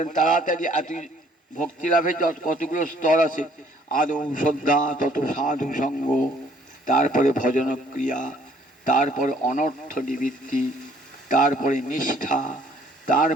তাড়াতাড়ি এত ভক্তি লাভের কতগুলো স্তর আছে। আদৌ শ্রদ্ধা, তত সাধু সঙ্গ, তারপরে ভজন ক্রিয়া, তারপরে অনর্থ নিবৃত্তি, তারপরে নিষ্ঠা,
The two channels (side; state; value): both; normal; correlation 0.61